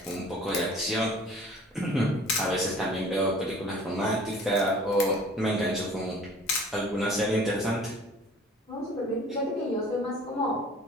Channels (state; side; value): normal; both; correlation 0.49